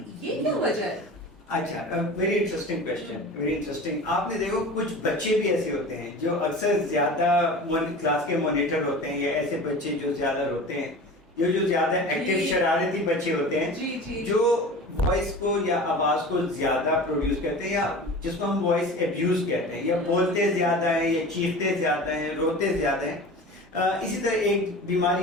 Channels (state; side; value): normal; both; correlation 0.36